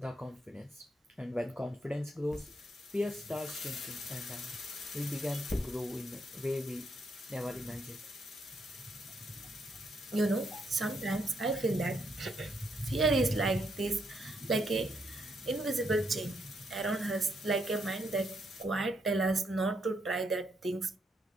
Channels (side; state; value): both; normal; correlation 0.76